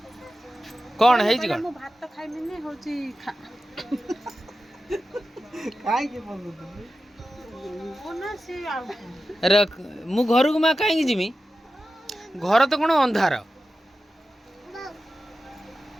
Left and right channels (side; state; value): both; normal; correlation 0.93